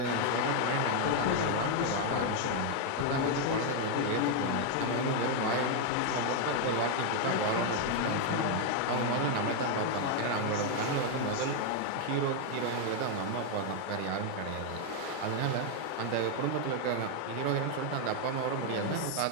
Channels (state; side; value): different; both; correlation 0.00